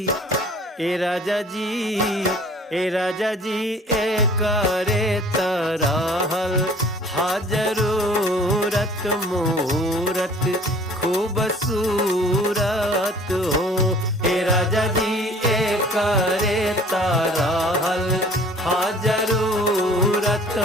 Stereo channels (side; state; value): both; normal; correlation 0.50